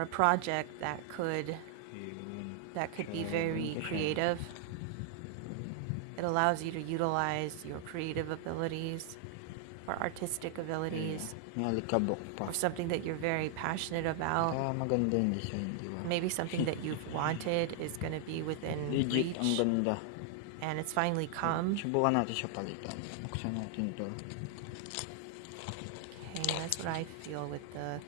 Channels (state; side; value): different; both; correlation 0.00